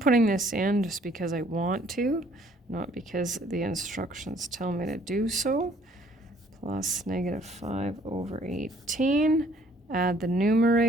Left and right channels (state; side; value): normal; both; correlation 0.60